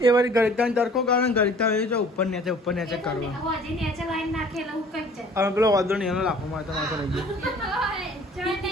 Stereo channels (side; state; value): both; normal; correlation 0.51